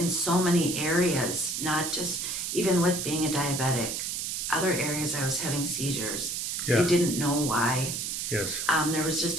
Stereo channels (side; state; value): right; noise; hiss, 3 dB below the sound